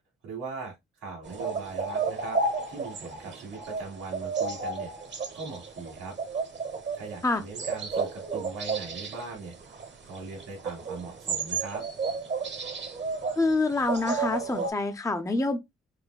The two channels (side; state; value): both; normal; correlation 0.38